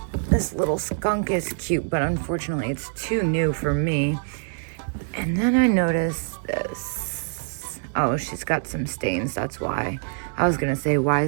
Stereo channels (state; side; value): silent; left; digital silence